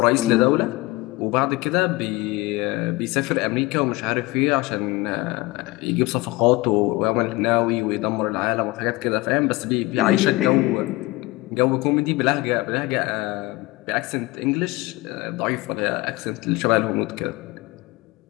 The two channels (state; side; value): quieter; right; 21.2 dB